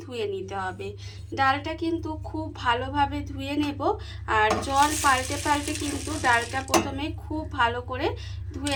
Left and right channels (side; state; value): both; identical; correlation 1.00